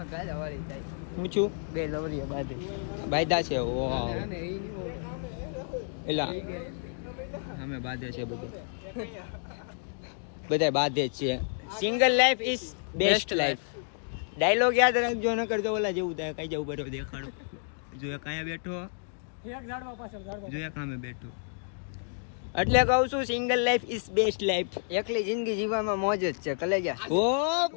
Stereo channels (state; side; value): silent; right; digital silence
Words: ગાડા વાળી થાય. હું છું બે લવરીએ બાંધી બાયદા છે. ઓ એલા અમે બાંધે છે બધા બાંધે જ છે. Single life is best life. Dialogue યાદ રાખજો, ન કરતો ઓલા જેવું થાય. કઈ જવું બરો દેખાડો. જો એક અહીંયા બેઠો, જો એક સામે બેઠો. એટલે કહું છું single life is best life. એકલી જિંદગી જીવવામાં મોજ જ છે. કલે ગયા ઓ